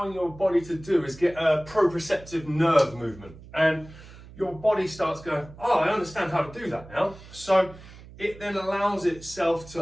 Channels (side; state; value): right; noise; hum, 19 dB below the sound